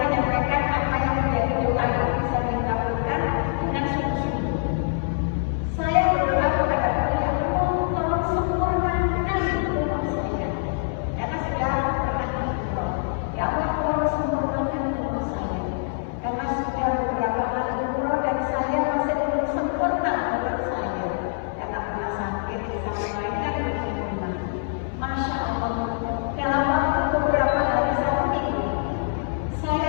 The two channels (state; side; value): silent; right; digital silence